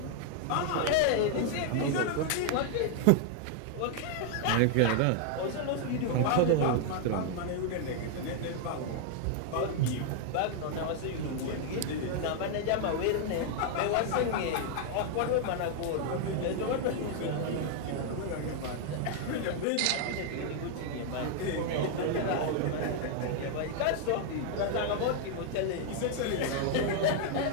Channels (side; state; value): both; different; correlation 0.00